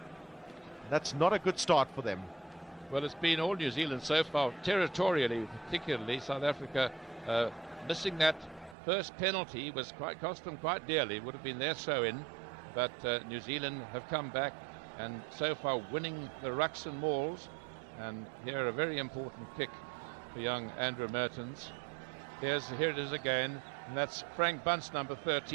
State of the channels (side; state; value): left; drops out; at 8.8 s